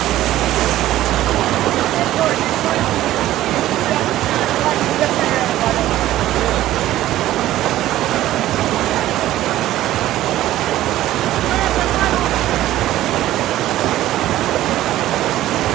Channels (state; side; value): quieter; left; 14.3 dB